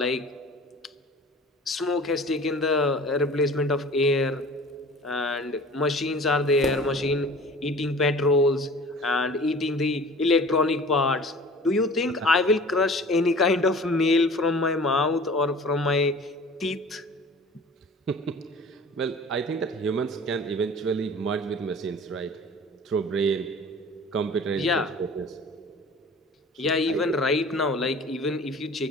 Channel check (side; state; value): both; normal; correlation 0.44